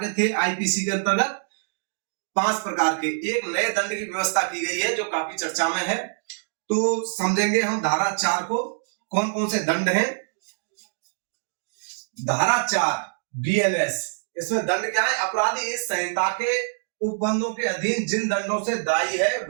थे आईपीसी के अंतर्गत? 5 प्रकार के। एक नए दंड की व्यवस्था की गई है जो काफी चर्चा में है। तो समझेंगे हम धारा 4 को, कौन कौन से दंड हैं। धारा 4 बीएनएस, इसमें दंड क्या है? अपराधी इस संहिता के उपबंधों के अधीन जिन दंडों से दायी है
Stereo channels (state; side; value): silent; left; digital silence